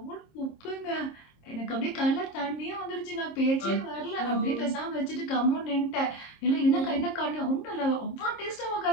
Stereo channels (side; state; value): right; late; 26 ms